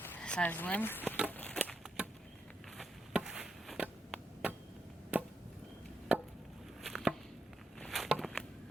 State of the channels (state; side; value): normal; both; correlation 0.80